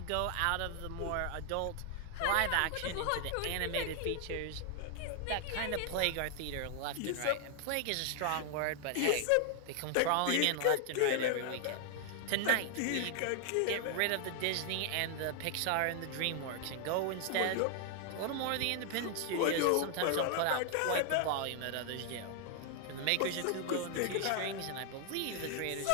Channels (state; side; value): different; both; correlation 0.00